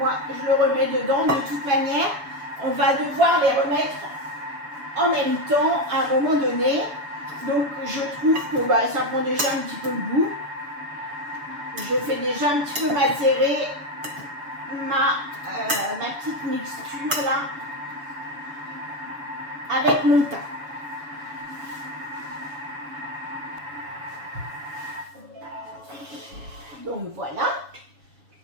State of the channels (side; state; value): left; late; 7.0 ms